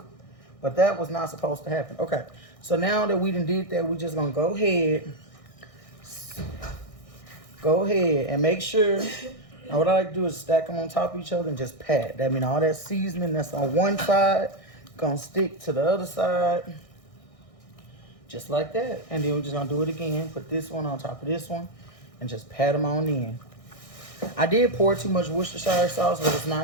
But that was not supposed to happen. Okay, so now that we done did that, we just gonna go ahead and make sure. Now what I like to do is stack them on top of each other and just pat. That means all that seasoning that's on one side gonna stick to the other side, just like that. And then we're just gonna do it again. Put this one on top of this one and just pat them on in. I did pour too much Worcestershire sauce, but it's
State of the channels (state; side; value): late; right; 1.6 ms